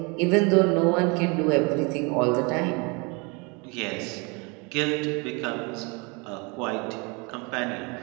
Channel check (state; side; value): quieter; left; 30.0 dB